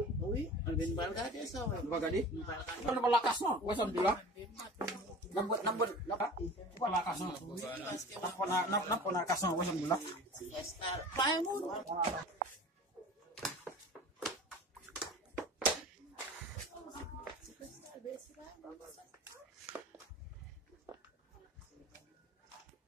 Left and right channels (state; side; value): normal; both; correlation 0.39